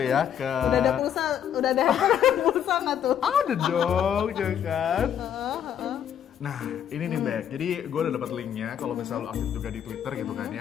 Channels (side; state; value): right; quieter; 9.4 dB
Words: ke. Udah ada handphone pulsa nggak tuh? Ada dong, ya kan? Nah, ini nih Bek, jadi gue udah dapat linknya kalau misalnya lo aktif juga di Twitter gitu kan